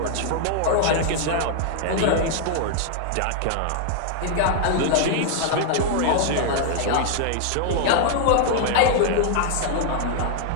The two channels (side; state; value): both; different; correlation 0.00